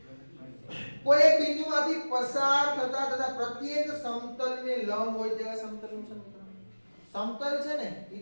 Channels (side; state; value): both; inverted; correlation -1.00